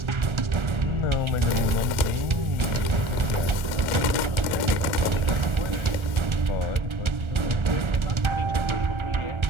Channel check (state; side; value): late; left; 1.4 ms